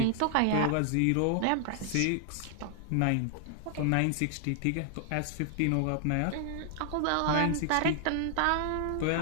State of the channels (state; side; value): different; both; correlation 0.00